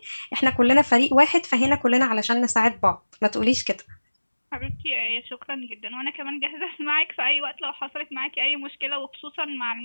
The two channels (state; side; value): inverted; both; correlation -1.00